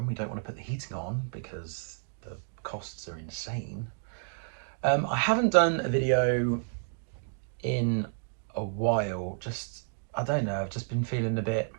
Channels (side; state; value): left; silent; digital silence